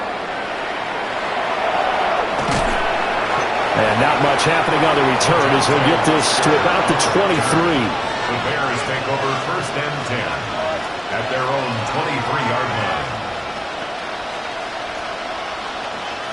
And not much happening on the return as he'll get this to about the 23. The Bears take over 1st and 10 at their own 23-yard line.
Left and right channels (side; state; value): both; identical; correlation 1.00